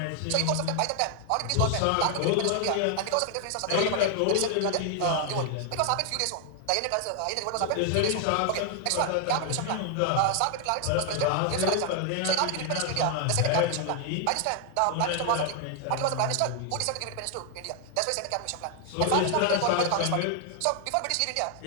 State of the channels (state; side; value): different; both; correlation 0.00